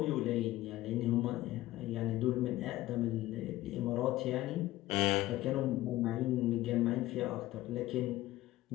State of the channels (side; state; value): right; quieter; 16.4 dB